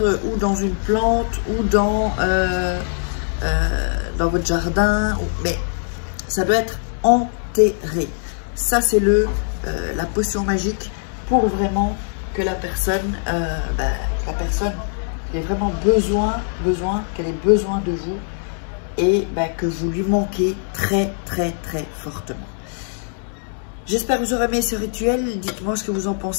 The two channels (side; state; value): right; silent; digital silence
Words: ou dans une plante ou dans votre jardin. Mais ça doit être enterré. Ça, c'est la potion magique pour vraiment que la personne ait vraiment qu'elle ait besoin de vous et que vous lui manquez très, très, très fortement. J'espère que vous aurez aimé ce rituel. Dites-moi ce que vous en